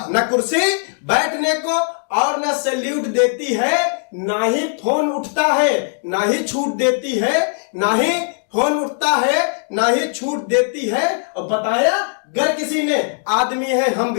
ना कुर्सी बैठने को और ना सैल्यूट देती है, ना ही फोन उठता है ना ही छूट देती है, ना ही फोन उठता है ना ही छूट देती है। और बताया गर किसी ने आदमी है हम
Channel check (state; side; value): silent; right; 67 dB below the other